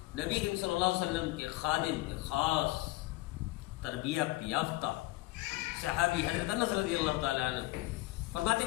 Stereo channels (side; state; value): right; quieter; 19.9 dB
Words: نبی کریم صلی اللہ علیہ وسلم کے خادم، خاص تربیت یافتہ صحابی حضرت انس رضی اللہ تعالیٰ عنہ فرماتے